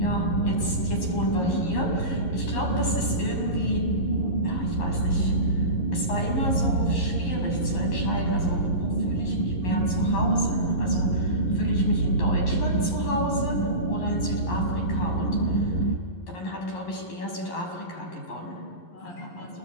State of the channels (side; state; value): right; late; 11 ms